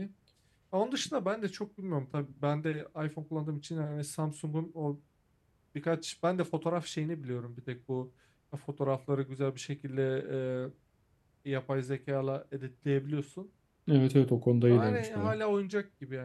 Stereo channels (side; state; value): both; identical; correlation 1.00